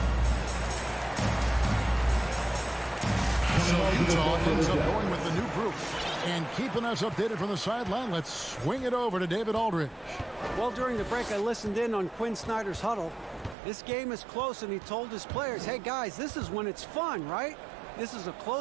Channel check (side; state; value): left; drops out; at 13.6 s